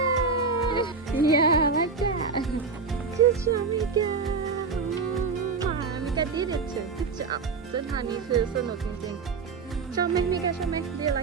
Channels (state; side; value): quieter; left; 4.8 dB